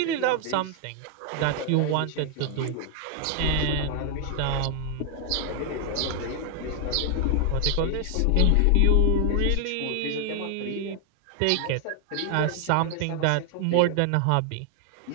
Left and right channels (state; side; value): different; both; correlation 0.00